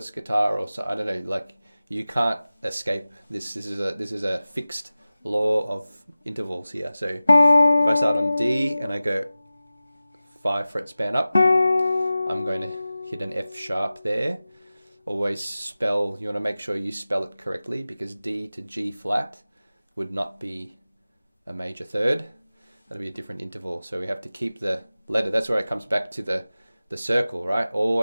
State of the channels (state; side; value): inverted; both; correlation -0.96